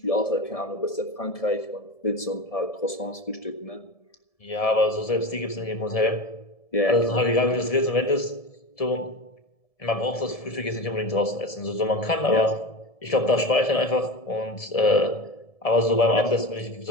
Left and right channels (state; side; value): late; right; 1.7 ms